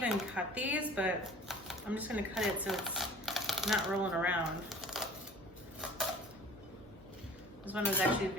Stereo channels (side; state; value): both; normal; correlation 0.46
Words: cut these, but I'm just gonna cut it so it's not rolling around. This one was actually